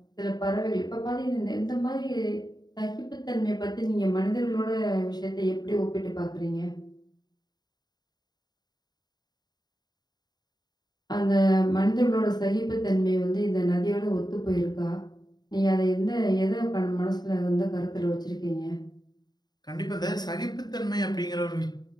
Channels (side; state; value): right; late; 0.20 ms